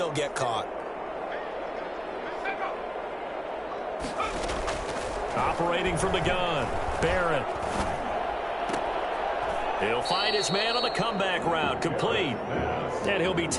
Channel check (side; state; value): both; identical; correlation 1.00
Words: get caught. Operating from the gun, Barrett. He'll find his man on the comeback route, complete. And he'll be